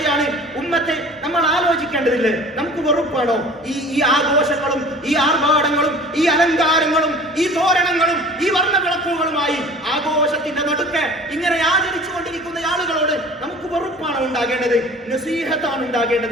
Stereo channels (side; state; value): both; normal; correlation 0.44